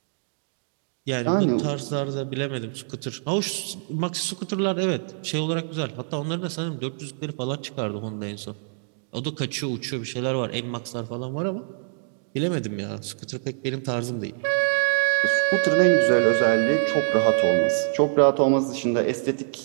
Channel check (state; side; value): silent; left; digital silence